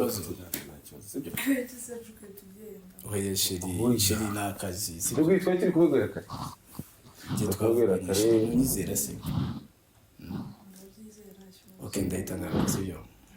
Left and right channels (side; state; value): both; identical; correlation 1.00